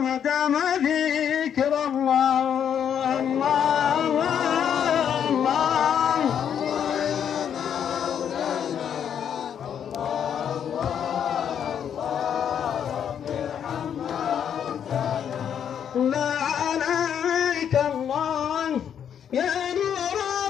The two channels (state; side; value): quieter; right; 8.6 dB